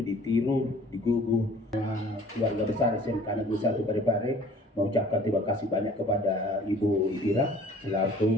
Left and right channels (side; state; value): both; normal; correlation 0.52